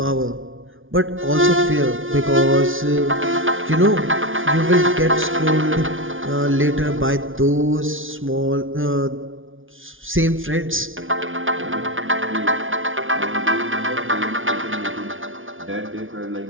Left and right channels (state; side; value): late; left; 0.58 ms